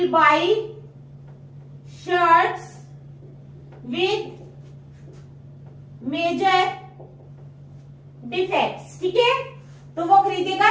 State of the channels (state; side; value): identical; both; correlation 1.00